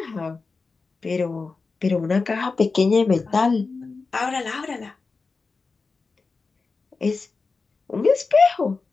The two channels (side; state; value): right; quieter; 4.2 dB